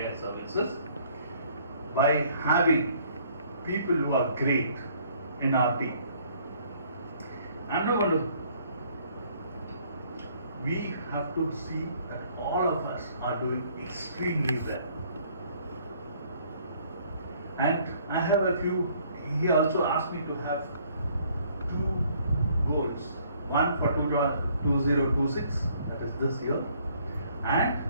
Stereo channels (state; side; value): inverted; both; correlation -0.62